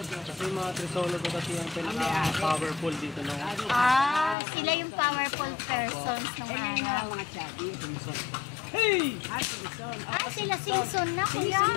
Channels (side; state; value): right; drops out; at 4.4 s